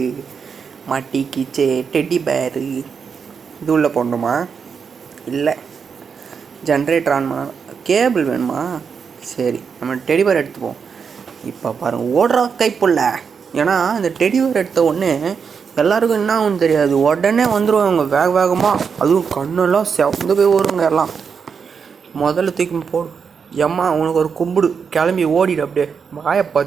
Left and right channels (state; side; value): quieter; left; 6.2 dB